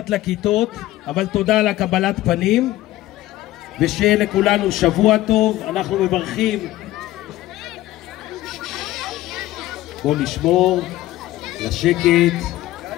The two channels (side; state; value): right; quieter; 15.9 dB